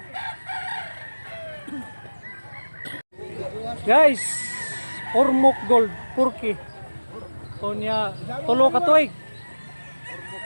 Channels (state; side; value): inverted; both; correlation -1.00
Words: Guys, Ormoc Gold, Purki. Kunya, tulo ka tuig.